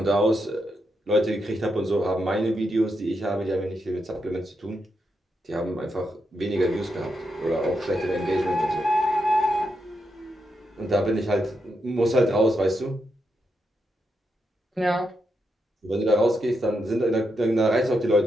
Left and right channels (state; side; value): normal; both; correlation 0.83